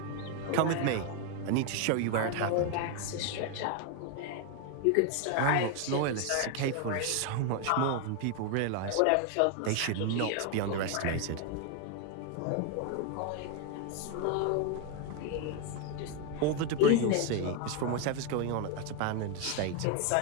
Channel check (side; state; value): both; different; correlation 0.01